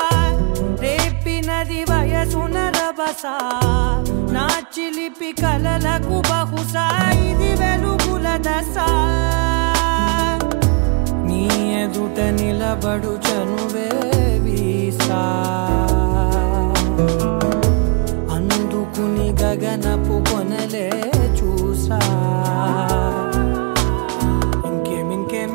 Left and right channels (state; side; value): quieter; left; 34.8 dB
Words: రేపినది వయసున రభసా నా చిలిపి కలలకు బహుశా ఇది వెలుగుల దశ నీ ఎదుట నిలబడు చనువే వీసా అందుకుని గగనపు కొనలే చూసా